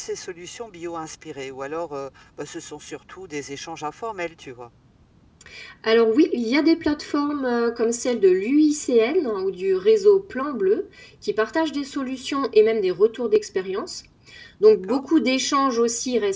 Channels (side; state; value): both; identical; correlation 1.00